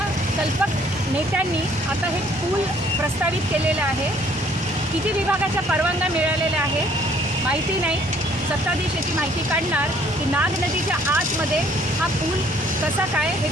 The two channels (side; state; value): both; normal; correlation 0.61